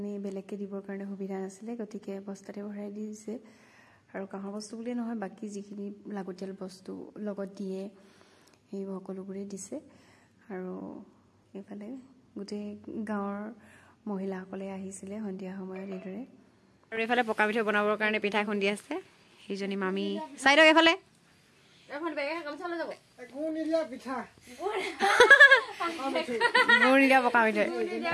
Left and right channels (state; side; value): identical; both; correlation 1.00